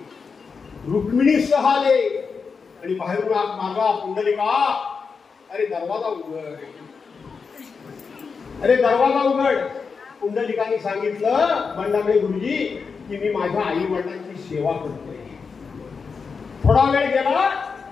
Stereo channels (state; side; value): quieter; right; 5.3 dB